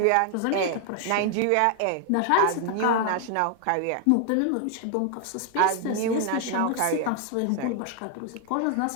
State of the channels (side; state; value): both; different; correlation 0.00